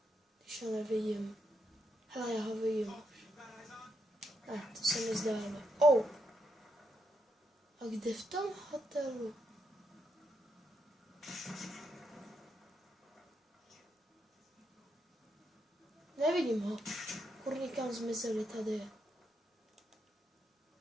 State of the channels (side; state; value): both; normal; correlation 0.81